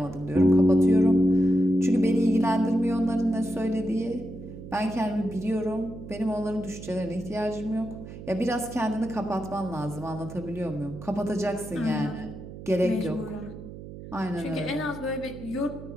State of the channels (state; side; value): noise; right; hum, 13 dB below the sound